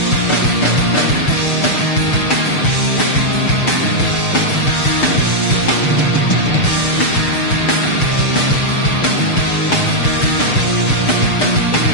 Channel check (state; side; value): late; right; 6.6 ms